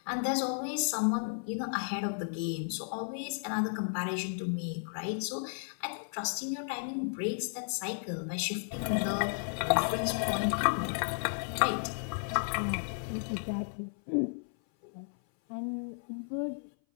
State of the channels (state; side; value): silent; right; 55 dB below the other